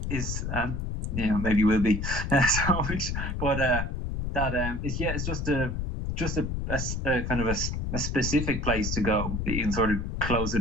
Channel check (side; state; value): left; noise; rumble, 2 dB below the sound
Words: is maybe will be. It's just a kind of a specific place to go that you can sort of close the